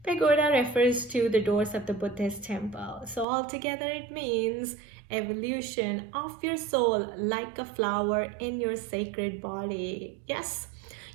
Pagoda refers to the doors of the Buddhist temple. So altogether it means evolution of your soul like a flower in your sacred body. Yes,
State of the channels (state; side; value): drops out; left; at 3.2 s